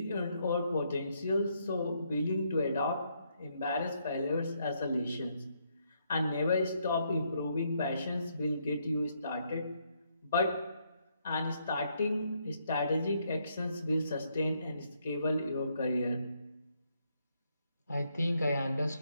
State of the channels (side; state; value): both; inverted; correlation -0.74